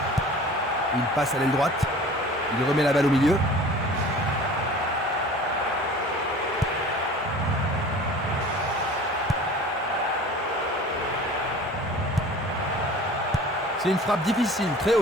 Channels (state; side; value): normal; both; correlation 0.43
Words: Il passe à l'aile droite. Il remet la balle au milieu. C'est une frappe difficile, très